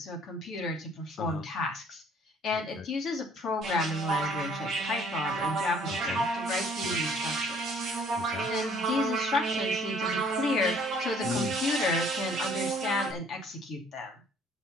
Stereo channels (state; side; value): normal; both; correlation 0.59